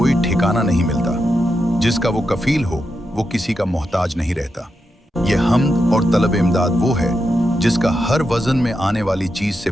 ठिकाना नहीं मिलता, जिसका वो कफील हो वो किसी का मोहताज नहीं रहता। ये हम्द और तलब इमदाद वो है जिसका हर वजन में आने वाली चीज से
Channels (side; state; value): both; normal; correlation 0.86